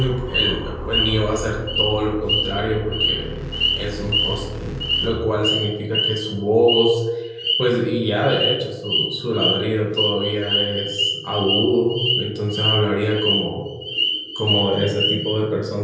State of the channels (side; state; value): both; identical; correlation 1.00